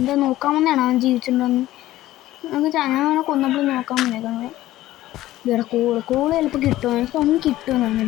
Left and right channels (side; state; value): right; quieter; 15.3 dB